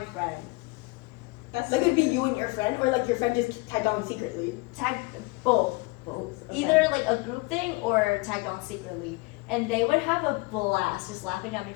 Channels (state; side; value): quieter; right; 25.4 dB